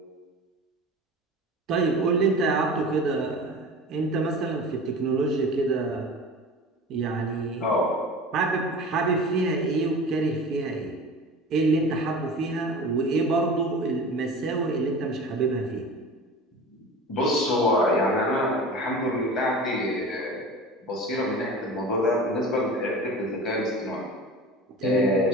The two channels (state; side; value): normal; both; correlation 0.36